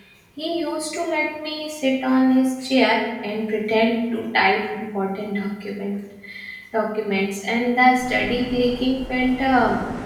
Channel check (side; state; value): both; identical; correlation 1.00